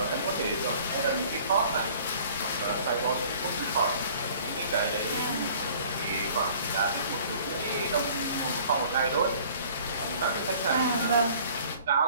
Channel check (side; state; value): both; inverted; correlation -0.51